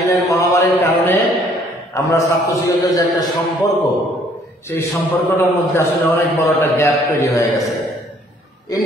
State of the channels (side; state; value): both; normal; correlation 0.61